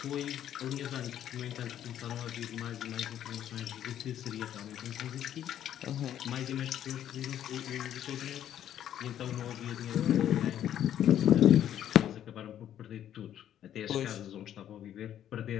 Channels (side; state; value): right; quieter; 10.8 dB